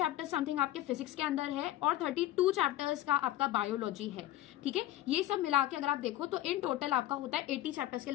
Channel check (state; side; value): quieter; right; 14.4 dB